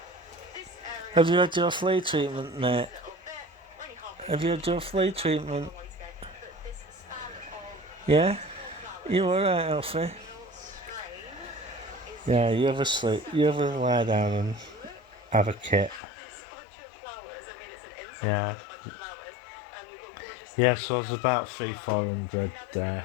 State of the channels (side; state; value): right; drops out; at 16.0 s